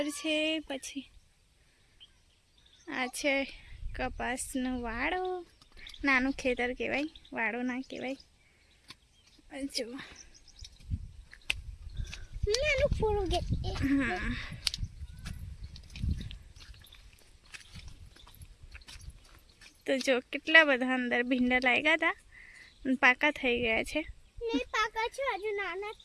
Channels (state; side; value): identical; both; correlation 1.00